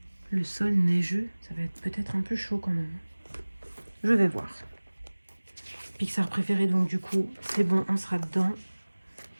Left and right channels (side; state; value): both; inverted; correlation -1.00